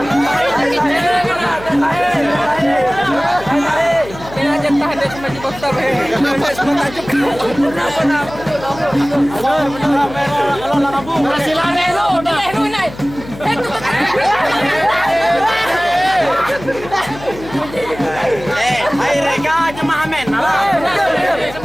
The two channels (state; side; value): noise; left; hum, 15 dB below the sound